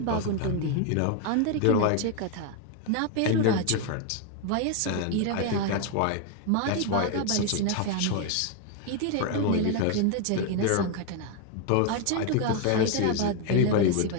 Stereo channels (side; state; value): both; different; correlation 0.01